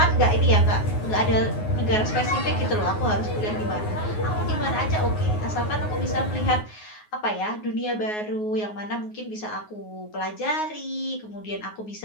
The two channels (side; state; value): right; late; 9.5 ms